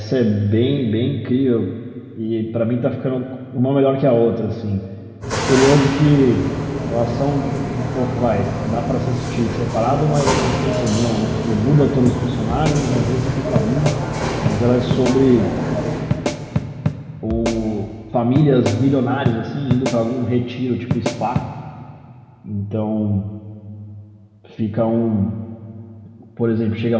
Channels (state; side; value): identical; both; correlation 1.00